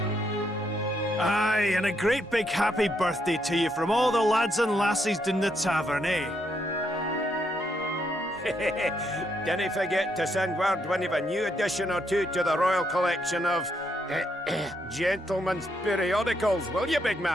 Aye, and a great big happy birthday to you from all the lads and lassies in the tavern, eh? Dinna forget to send word when you've a new edition or two to the Royal Collection of Gentlemen's Periodicals, will you, big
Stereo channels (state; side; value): normal; both; correlation 0.76